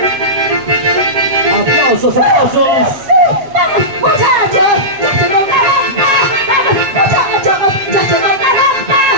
Aplausos. Vamos, muchachos, Cheche Colcabamba. Vamos, muchachos, Cheche Colcabamba.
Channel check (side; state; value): left; late; 7.3 ms